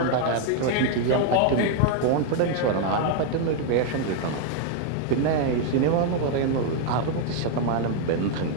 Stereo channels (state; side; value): different; both; correlation 0.01